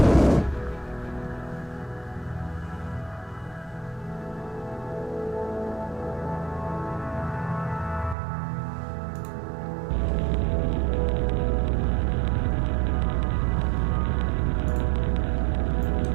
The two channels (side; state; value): left; drops out; at 8.2 s